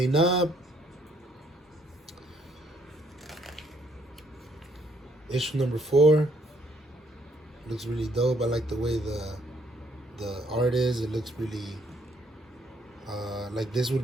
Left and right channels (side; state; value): both; normal; correlation 0.68